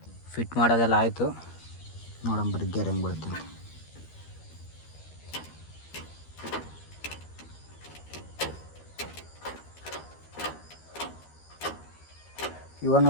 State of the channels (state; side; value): late; right; 13 ms